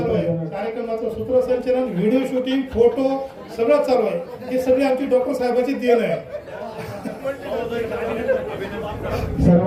आहे. कार्यक्रमाचं सूत्रसंचलन, व्हिडिओ शूटिंग, फोटो सगळं चालू आहे. हे सगळे आमची डॉक्टर साहेबांची देण आहे.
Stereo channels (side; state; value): both; identical; correlation 1.00